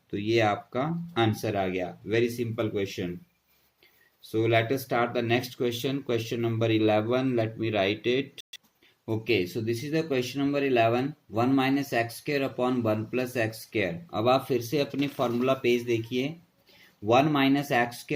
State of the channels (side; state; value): both; identical; correlation 1.00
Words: तो ये आपका आंसर आ गया। Very simple question. So let us start the next question. Question number 11. Let me write it. Okay, so this is the question number 11. 1 minus x square upon 1 plus x square. अब आप फिर से अपनी formula page देखिए। 1 minus x